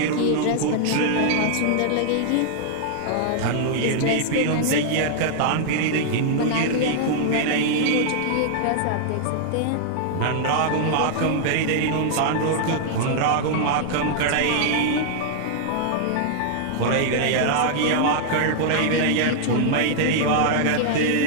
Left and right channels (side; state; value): both; different; correlation -0.01